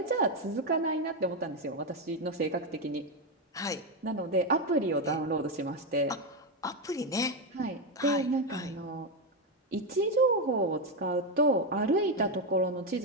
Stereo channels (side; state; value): both; normal; correlation 0.08